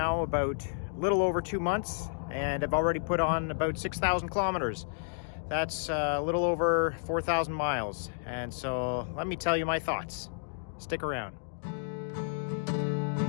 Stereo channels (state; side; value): silent; right; digital silence